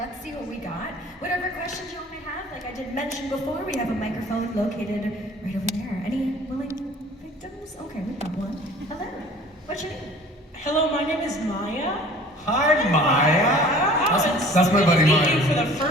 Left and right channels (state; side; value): normal; both; correlation 0.48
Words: see what we got. Whatever questions y'all may have, like I did mention before, we have a microphone located right over there. Any willing victims? Okay, we got one. Hello, what's your name? Hello, my name is Maya. Hi, Maya. That's my buddy Meeting Maya. for the